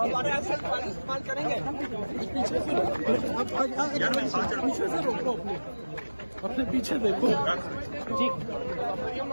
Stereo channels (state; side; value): inverted; both; correlation -1.00